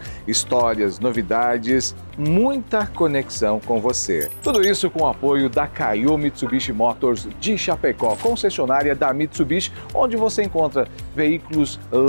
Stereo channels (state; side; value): inverted; both; correlation -1.00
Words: histórias, novidades, muita conexão com você. Tudo isso com o apoio da Kaiô Mitsubishi Motors de Chapecó, concessionária da Mitsubishi, onde você encontra veículos